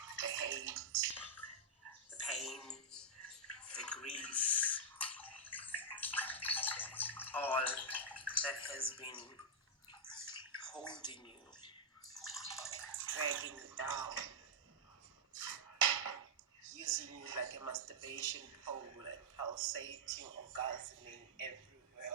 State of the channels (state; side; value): normal; both; correlation -0.06